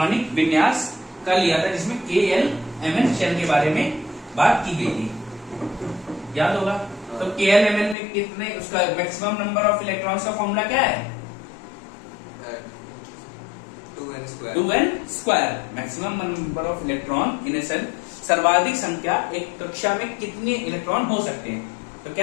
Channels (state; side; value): drops out; right; at 8.0 s